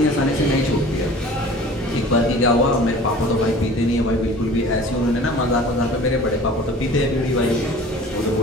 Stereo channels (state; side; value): normal; both; correlation 0.44